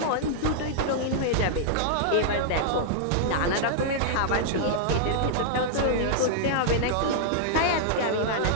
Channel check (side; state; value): both; different; correlation -0.01